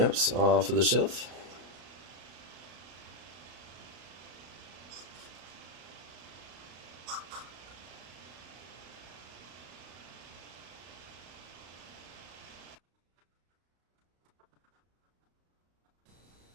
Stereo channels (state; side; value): late; left; 33 ms